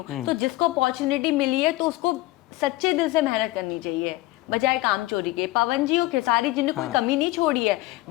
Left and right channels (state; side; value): quieter; right; 19.1 dB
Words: तो जिसको अपॉर्चुनिटी मिली है तो उसको सच्चे दिल से मेहनत करनी चाहिए, बजाय काम चोरी के। पवन जी और खेसारी जी ने कोई कमी नहीं छोड़ी है,